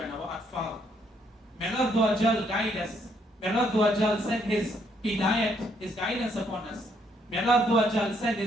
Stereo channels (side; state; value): both; normal; correlation 0.71